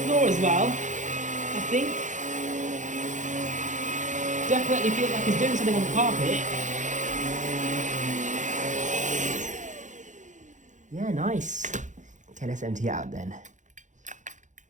floor as well, I think. Definitely feels like it's doing something on the carpet. Yeah, nice. Okay, let's empty it out then.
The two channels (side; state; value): left; late; 0.36 ms